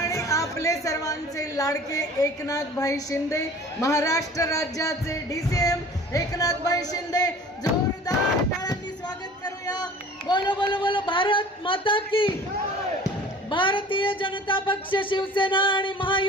आपले सर्वांचे लाडके एकनाथभाई शिंदे, महाराष्ट्र राज्याचे DCM एकनाथभाई शिंदे, जोरदार टाळ्यांनी स्वागत करूया। बोलो बोलो बोलो भारत माता की, भारतीय जनता पक्ष, शिवसेना आणि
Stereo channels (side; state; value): both; normal; correlation 0.45